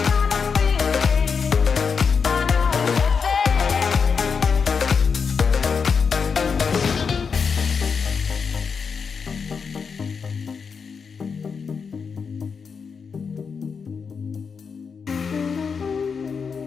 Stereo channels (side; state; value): right; quieter; 5.8 dB